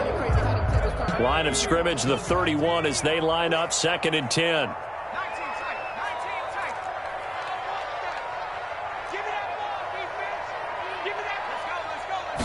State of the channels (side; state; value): both; identical; correlation 1.00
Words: Line of scrimmage, the 31 as they line up, 2nd and 10.